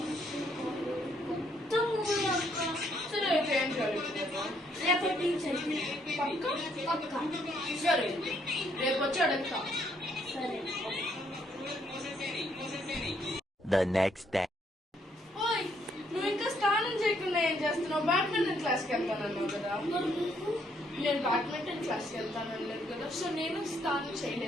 సరే అయితే ఏం జరుగుతుందో రేపటి పక్క. సరే రేపు వచ్చి అడుగుతా. సరే. The next day. ఓయ్, నువ్వు ఇంకా స్నానం చేయకుండా ఏం చేస్తున్నావు? బ్యాడ్మింటన్ క్లాస్కి వెళ్తానన్నావు కదా. నేను బ్యాడ్మింటన్ క్లాస్కి వెళ్తానలేదు కదా, సో నేను స్నానం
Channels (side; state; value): both; normal; correlation 0.71